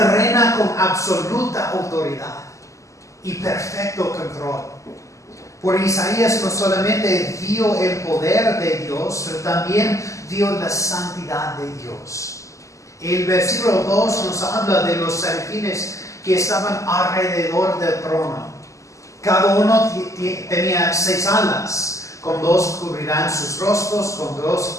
con absoluta autoridad y perfecto control. Por Isaías no solamente vio el poder de Dios, pero también vio la santidad de Dios. El versículo 2 nos habla de los serafines que estaban alrededor del trono. Cada uno tenía 6 alas. Con 2 cubrirán sus rostros, con 2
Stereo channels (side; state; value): right; late; 0.16 ms